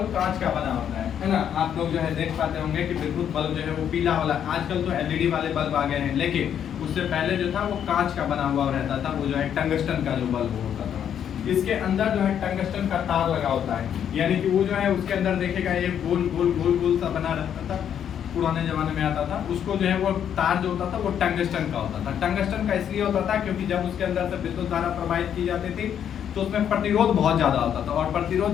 कांच का बना होता है ना। आप लोग जो है देख पाते होंगे कि विद्युत बल्ब जो है वो पीला वाला, आजकल तो LED वाले बल्ब आ गए हैं, लेकिन उससे पहले जो था वो कांच का बना हुआ रहता था, वो जो है टंगस्टन का जो बल्ब होता था। इसके अंदर जो है टंगस्टन का तार लगा होता है, यानी कि वो जो है उसके अंदर देखेगा ये गोल गोल गोल गोल सा बना रहता था, पुराने जमाने में आता था। उसको जो है वो तार जो होता था वो टंगस्टन का होता था। टंगस्टन का इसलिए होता था क्योंकि जब उसके अंदर से विद्युत धारा प्रवाहित की जाती थी तो उसमें प्रतिरोध बहुत ज्यादा होता था, और प्रतिरोध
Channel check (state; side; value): quieter; right; 9.1 dB